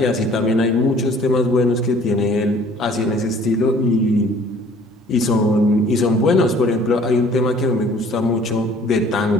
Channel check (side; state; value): both; normal; correlation 0.53